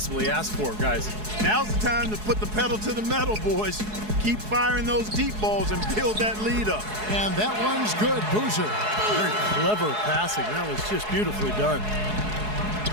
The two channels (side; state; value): left; late; 4.7 ms